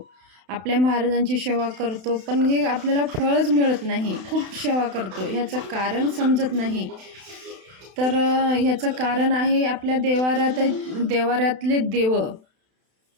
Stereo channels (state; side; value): late; left; 31 ms